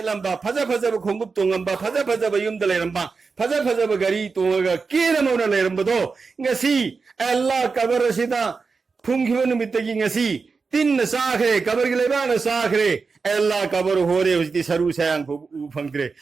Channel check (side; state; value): left; quieter; 4.7 dB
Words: फज फज खोंगुप तोंगंबा फज फज युम द लेरंबा फज फज गरी तोंगा केरमोना लेरंबदो ngasi अल्लाह कबर सिदा फुंगिबो नुमितगी ngasi tin na sakre kabar gi leba na sakre ella kabar hore usti saru sayang phu phangtre